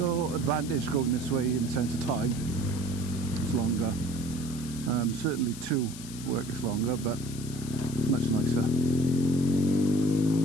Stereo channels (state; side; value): noise; left; hiss, 14 dB below the sound